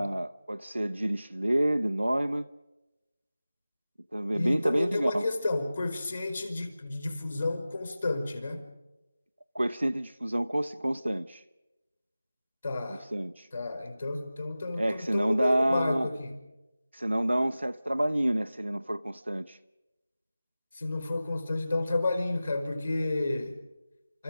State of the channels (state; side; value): inverted; both; correlation -0.96